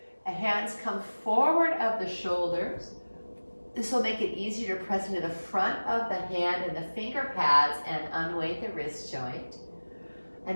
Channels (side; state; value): both; inverted; correlation -1.00